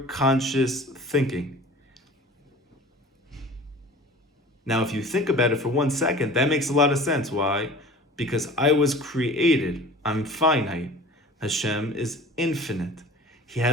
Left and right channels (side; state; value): both; normal; correlation 0.42